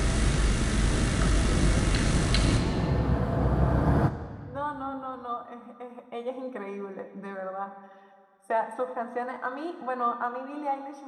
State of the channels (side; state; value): both; identical; correlation 1.00